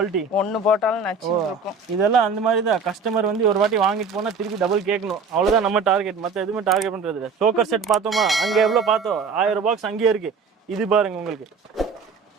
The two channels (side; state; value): left; quieter; 4.9 dB